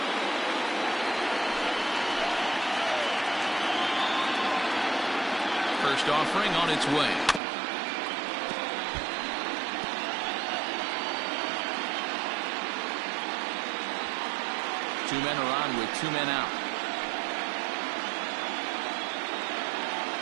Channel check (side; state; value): left; drops out; at 7.4 s